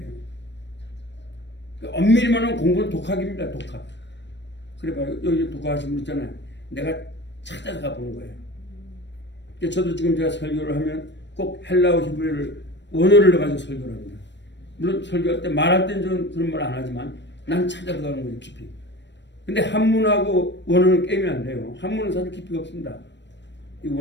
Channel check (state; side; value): late; right; 0.52 ms